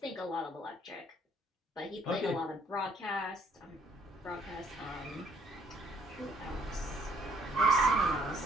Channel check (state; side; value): normal; both; correlation 0.64